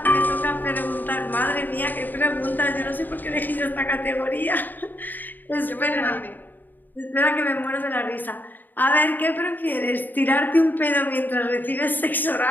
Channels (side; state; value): right; late; 0.089 ms